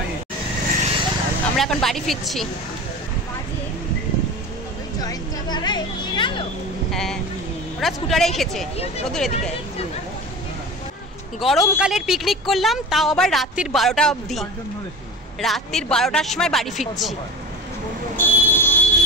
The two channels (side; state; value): both; normal; correlation 0.31